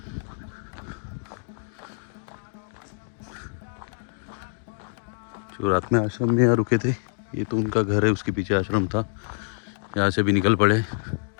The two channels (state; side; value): silent; right; digital silence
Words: जो रात में आश्रम में यहाँ रुके थे, ये तो उनका घर है, उसके पीछे आश्रम था। यहाँ से भी निकल पड़े।